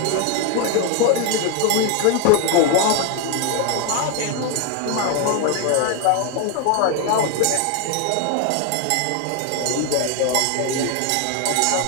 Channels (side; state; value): both; different; correlation 0.01